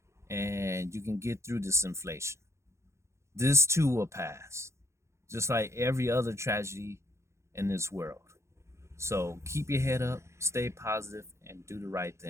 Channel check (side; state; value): left; late; 0.14 ms